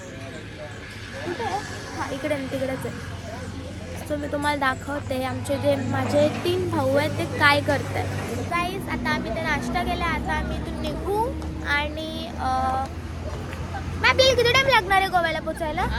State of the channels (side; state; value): both; identical; correlation 1.00